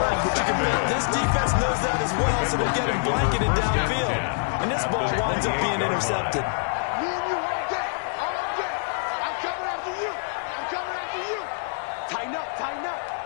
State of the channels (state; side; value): silent; right; digital silence